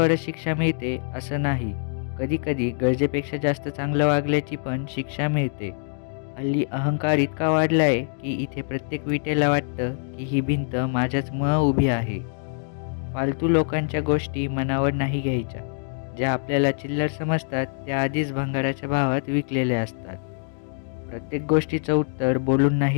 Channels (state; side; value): silent; right; digital silence